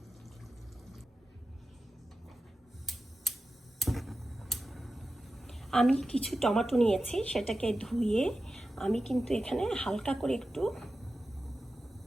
আমি কিছু টমেটো নিয়েছি, সেটাকে ধুয়ে আমি কিন্তু এখানে হালকা করে একটু,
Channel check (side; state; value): both; normal; correlation 0.93